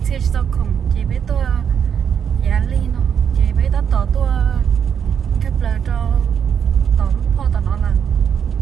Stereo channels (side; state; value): left; quieter; 7.8 dB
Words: xe sao không chị bé tôi giá ly nó chị bé đã tỏ tôi cái lời cho tỏ lúc po tỏ nó là